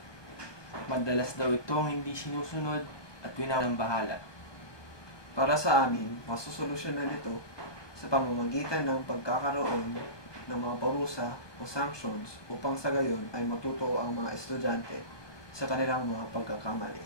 Madalas daw itong hindi sinusunod at winawalang bahala. Para sa amin, masusolusyonan ito sa pamamagitan ng pagkakaroon ng mga parusa o sanctions upang sa gayon ay matuto ang mga estudyante sa kanilang mga pagkakamali.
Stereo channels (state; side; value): late; right; 1.2 ms